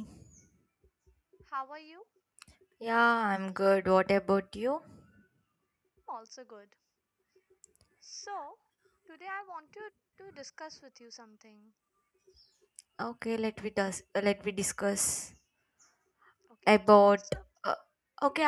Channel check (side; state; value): both; identical; correlation 1.00